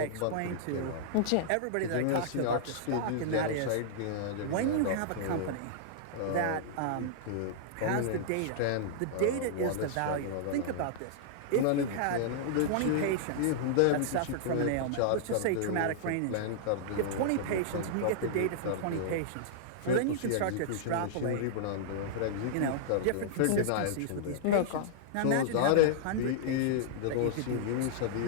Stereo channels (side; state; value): both; different; correlation -0.02